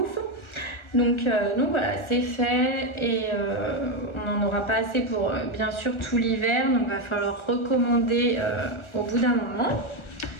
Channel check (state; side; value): late; right; 1.4 ms